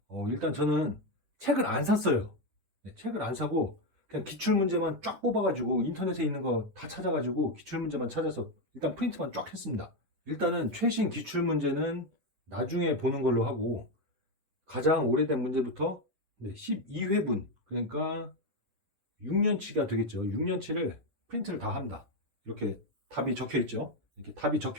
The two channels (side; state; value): left; late; 10 ms